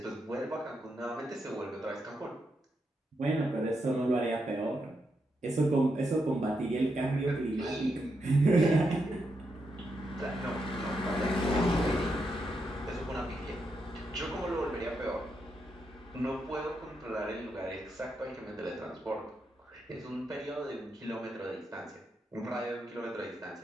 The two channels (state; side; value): normal; both; correlation 0.83